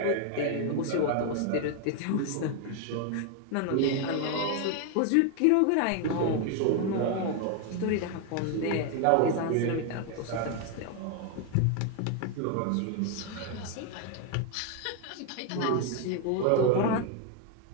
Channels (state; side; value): different; both; correlation 0.01